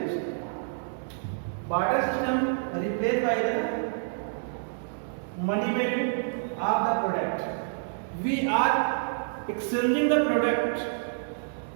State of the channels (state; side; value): silent; left; 59 dB below the other